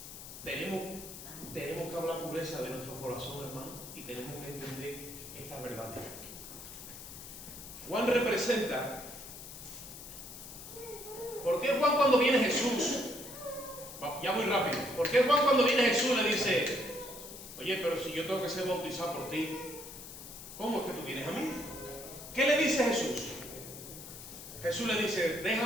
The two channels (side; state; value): left; noise; hiss, 13 dB below the sound